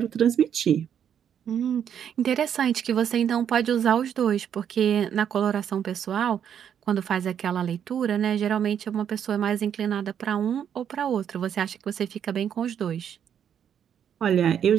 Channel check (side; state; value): left; quieter; 8.7 dB